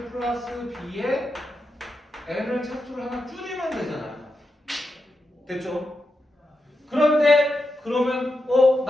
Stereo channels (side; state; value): both; normal; correlation 0.87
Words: 플러스 b에 n을 차수를 하나 줄이면 되잖아요. 됐죠? 그런데 그러면